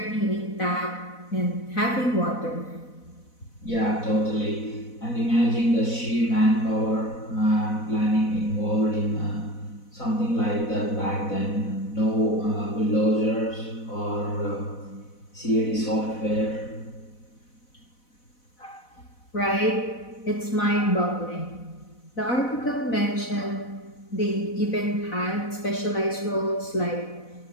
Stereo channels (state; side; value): late; right; 4.0 ms